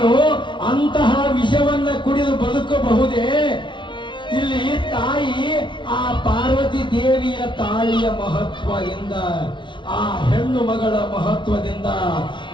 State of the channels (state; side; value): late; right; 0.24 ms